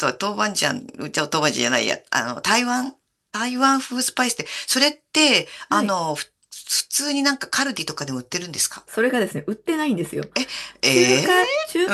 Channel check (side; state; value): both; identical; correlation 1.00